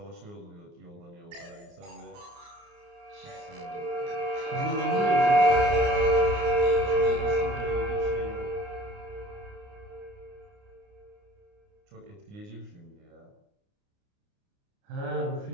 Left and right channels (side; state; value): left; late; 29 ms